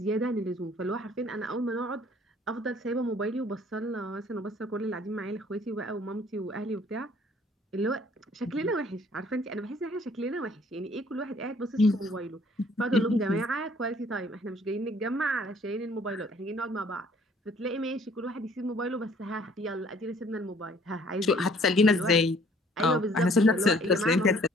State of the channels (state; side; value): normal; both; correlation 0.58